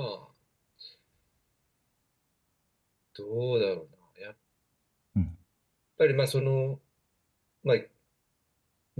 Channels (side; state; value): both; identical; correlation 1.00